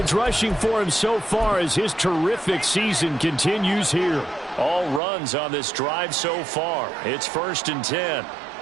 rushing for him so far as his terrific season continues here. All runs on this drive so far. It's 1st and 10.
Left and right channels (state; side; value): drops out; left; at 5.0 s